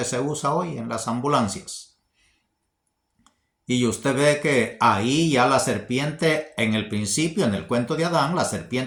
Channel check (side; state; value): both; identical; correlation 1.00